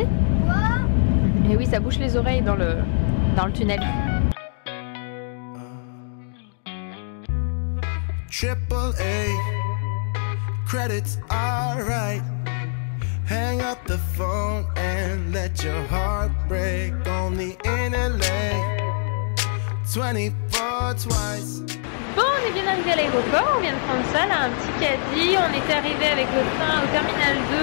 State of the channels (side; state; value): right; silent; 63 dB below the other